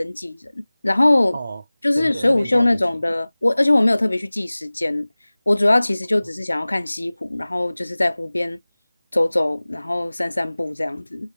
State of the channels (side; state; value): both; inverted; correlation -0.99